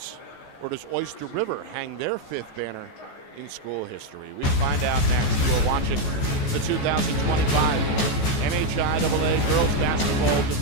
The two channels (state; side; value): late; right; 14 ms